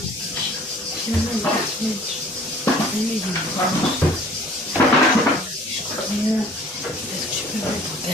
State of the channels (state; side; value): normal; both; correlation 0.51